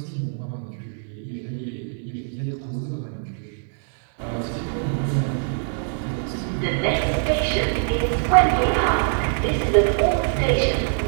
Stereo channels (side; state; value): left; silent; 63 dB below the other